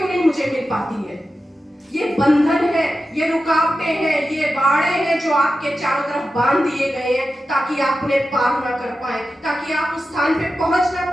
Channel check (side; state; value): both; normal; correlation 0.92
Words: नहीं मुझे मिल पाती है? ये बंधन है, ये रुकावटें हैं, ये बाड़े हैं जो आपके चारों तरफ बांध दिए गए हैं ताकि आप उन्हें पार ना कर पाए, ताकि आप उस स्थान पे पहुंच ना